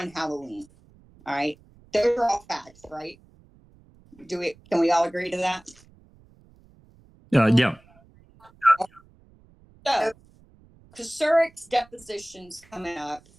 Halloween. All right. Those are all facts, right? Can we all agree to that? Yeah. So Kucerk's deposition's coming up.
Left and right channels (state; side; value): noise; right; rumble, 28 dB below the sound